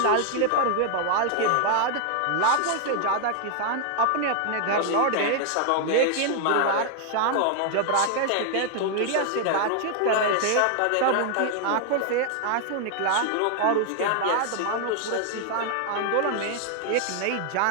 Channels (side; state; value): both; different; correlation 0.00